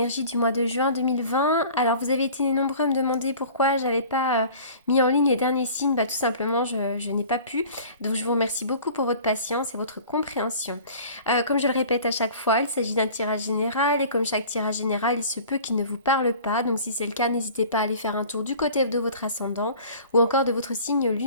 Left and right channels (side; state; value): both; inverted; correlation -0.45